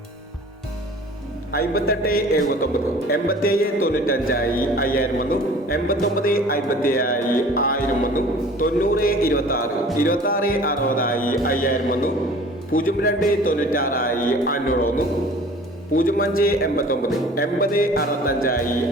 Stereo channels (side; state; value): both; normal; correlation 0.46